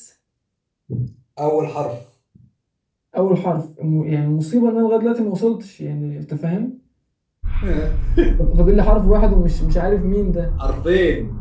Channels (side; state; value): both; identical; correlation 1.00